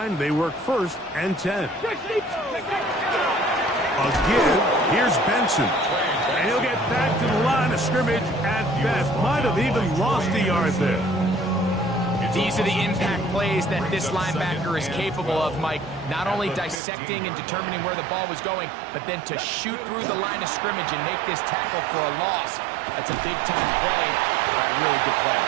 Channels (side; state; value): left; drops out; at 16.8 s